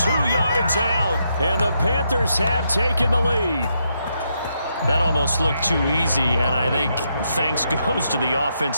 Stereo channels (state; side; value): inverted; both; correlation -0.79